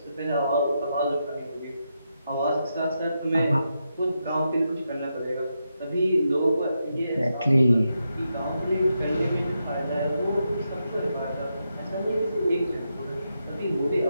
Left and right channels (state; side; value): inverted; both; correlation -0.85